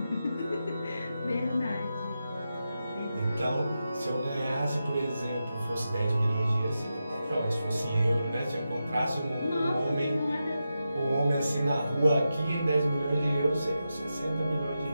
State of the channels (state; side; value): inverted; both; correlation -0.90